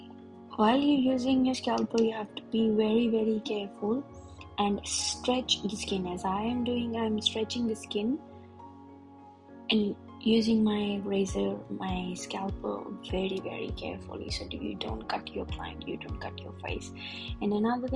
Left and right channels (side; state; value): both; identical; correlation 1.00